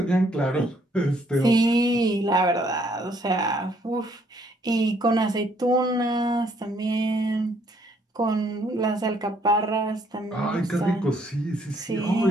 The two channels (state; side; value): normal; both; correlation 0.67